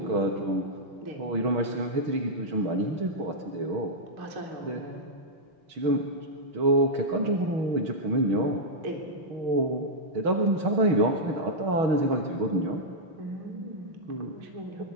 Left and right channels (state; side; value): late; left; 6.3 ms